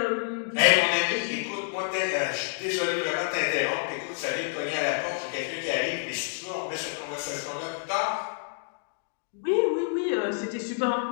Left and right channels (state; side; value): silent; right; digital silence